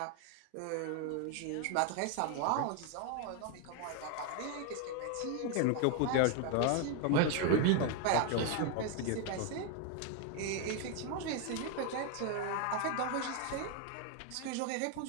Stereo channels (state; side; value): different; both; correlation 0.01